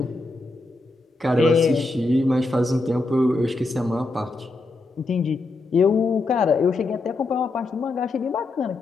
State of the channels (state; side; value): quieter; right; 3.2 dB